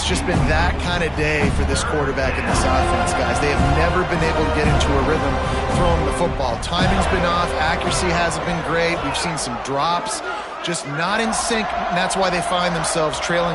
just been that kind of day for this quarterback and this offense, guys. They have never been able to get into a rhythm throwing the football. Timing's been off. Accuracy hasn't been great. We've seen some drops, just not in sync. And that's why they find themselves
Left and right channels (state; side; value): identical; both; correlation 1.00